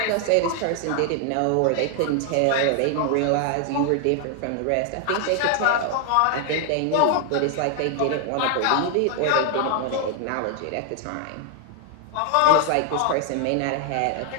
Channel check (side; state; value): both; different; correlation 0.00